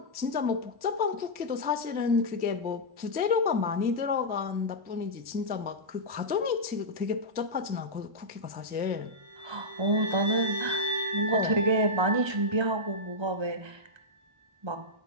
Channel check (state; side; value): late; left; 1.3 ms